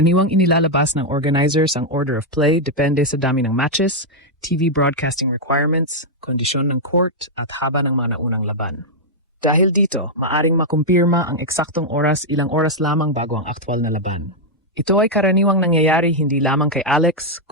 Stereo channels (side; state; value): both; normal; correlation -0.03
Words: inilalabas ng organizers ang order of play depende sa dami ng matches, TV broadcasting requirements, kondisyon ng court at haba ng mga naunang laban. Dahil dito, maaring makumpirma ang eksaktong oras ilang oras lamang bago ang aktwal na laban. Ito ay karaniwang nangyayari hindi lamang kay Alex,